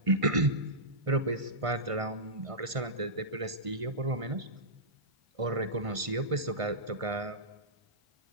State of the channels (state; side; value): late; left; 1.5 ms